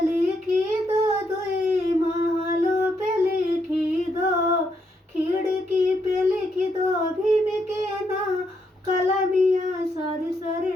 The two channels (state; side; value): normal; both; correlation 0.77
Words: लिखी दो दुई, महलों पे लिखी दो। खिड़की पे लिखी दो भीम के नाम कलमिया सर सर